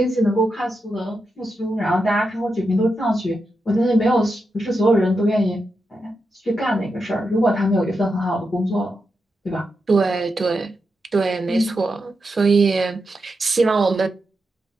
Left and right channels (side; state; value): both; normal; correlation 0.87